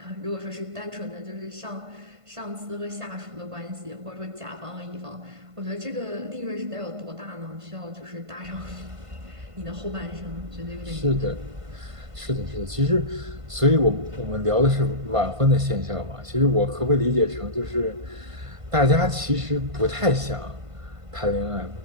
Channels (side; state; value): left; late; 1.5 ms